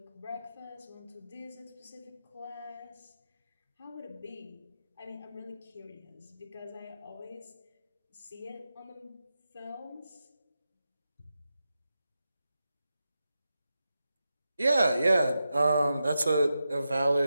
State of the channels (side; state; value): both; inverted; correlation -0.90